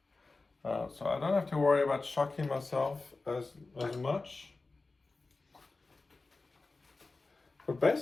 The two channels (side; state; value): right; quieter; 3.6 dB